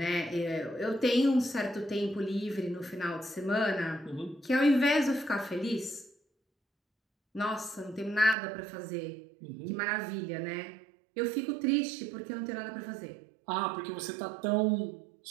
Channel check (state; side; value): drops out; left; at 8.3 s